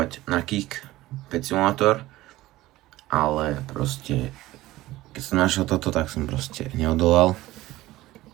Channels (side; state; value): left; quieter; 17.1 dB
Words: na Kik Pet Simulator, ale proste keď som našiel toto, tak som proste neodolal.